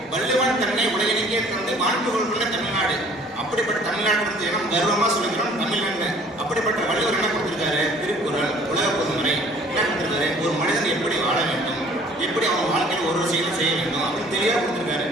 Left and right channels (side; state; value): both; normal; correlation 0.53